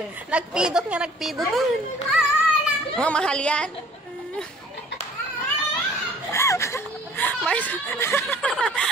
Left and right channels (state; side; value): normal; both; correlation 0.53